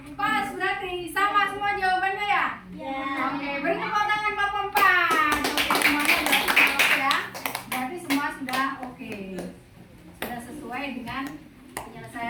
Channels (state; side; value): identical; both; correlation 1.00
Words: Pas, berarti sama semua jawabannya ya? Ya. Oke, beri tepuk tangan kelompok 4. Oke, semuanya sudah oke ya. Berarti semua sudah oke. Sudah sesuai dengan